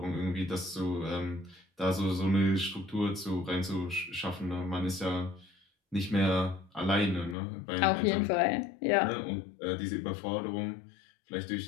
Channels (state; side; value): drops out; right; at 7.4 s